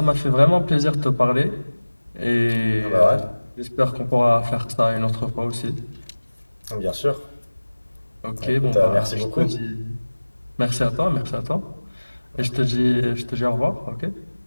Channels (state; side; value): inverted; both; correlation -1.00